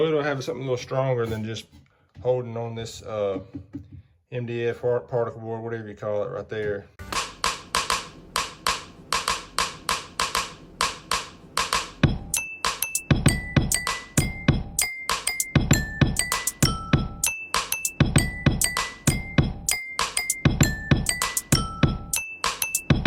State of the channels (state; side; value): identical; both; correlation 1.00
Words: it'll have something a little stronger than just holding on this MDF particle board, whatever you call it right there.